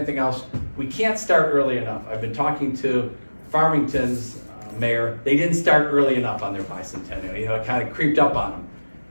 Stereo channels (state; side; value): inverted; both; correlation -1.00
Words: else, we can't start early enough. I've been talking to Farmington's mayor. They didn't start early enough on their bicentennial. You know, it kind of creeped up on them.